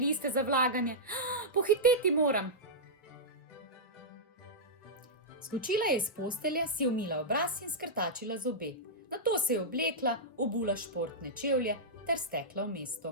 za vlaganje. Pohiteti moram. Skočila je iz postelje, si umila obraz in skrtačila zobe. Nato se je oblekla, obula športne čevlje ter stekla v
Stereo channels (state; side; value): normal; both; correlation -0.11